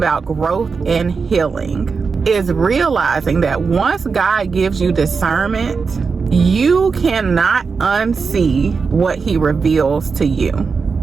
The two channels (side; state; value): left; quieter; 5.1 dB